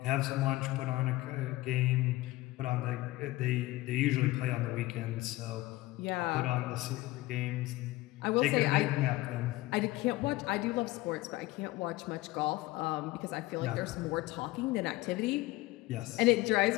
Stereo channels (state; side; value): quieter; right; 18.9 dB